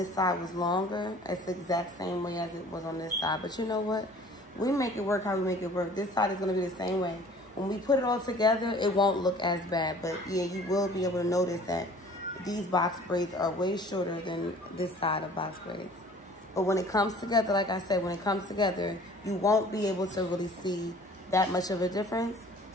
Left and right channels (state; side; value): normal; both; correlation 0.50